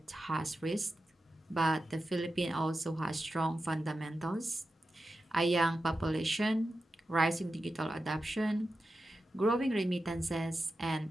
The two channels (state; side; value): normal; both; correlation 0.91